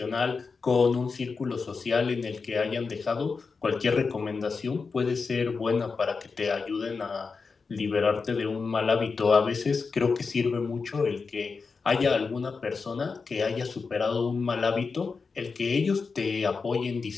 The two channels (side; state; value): right; quieter; 4.8 dB